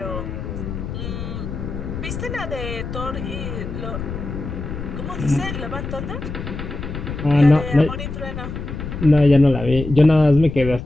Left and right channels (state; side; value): noise; left; rumble, 7 dB below the sound